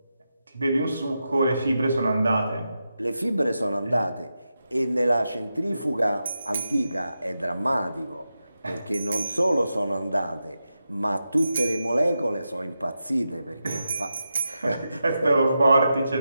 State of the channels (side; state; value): both; inverted; correlation -0.89